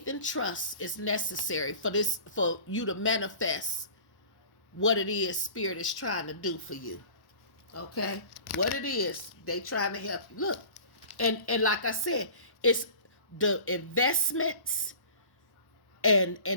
and trust is necessary for you to manifest what it is Spirit is trying to do for you. Okay? What it is, they trying to help you. Look. And like I said, it's the investments and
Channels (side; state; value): right; late; 1.1 ms